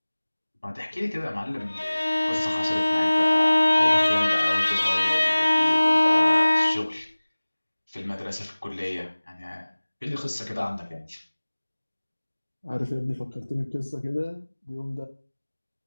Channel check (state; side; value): inverted; both; correlation -1.00